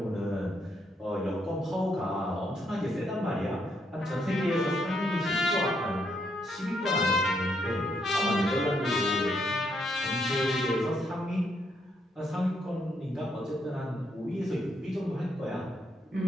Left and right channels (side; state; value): both; normal; correlation 0.76